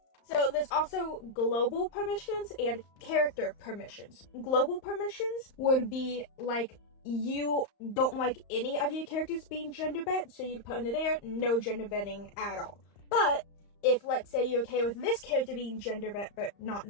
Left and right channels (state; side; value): late; right; 35 ms